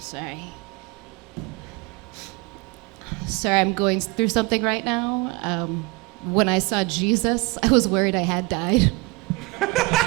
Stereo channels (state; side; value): quieter; left; 26.0 dB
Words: Sorry, I'm going through something right now. When I saw Jesus, I was worried I had died.